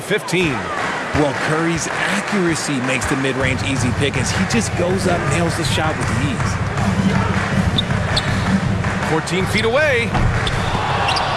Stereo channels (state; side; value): identical; both; correlation 1.00